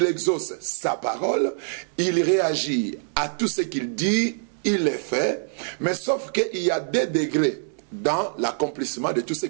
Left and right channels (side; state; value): left; silent; digital silence